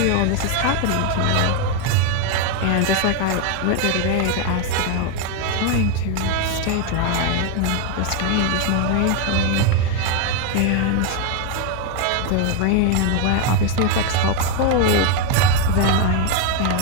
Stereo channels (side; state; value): both; different; correlation 0.01